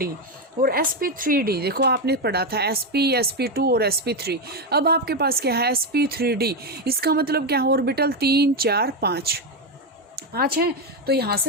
और sp3d देखो आपने पढ़ा था sp, sp2 और sp3। अब आपके पास क्या है sp3d, इसका मतलब क्या है ऑर्बिटल 3 4 5 है। तो यहाँ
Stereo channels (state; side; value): normal; both; correlation 0.09